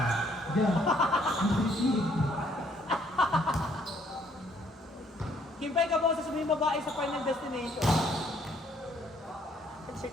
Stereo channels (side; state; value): both; normal; correlation 0.65